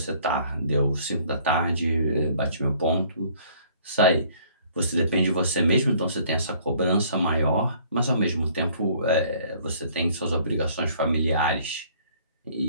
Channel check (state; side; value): inverted; both; correlation -0.58